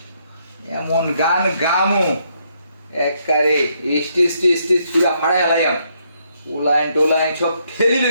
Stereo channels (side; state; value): both; inverted; correlation -0.74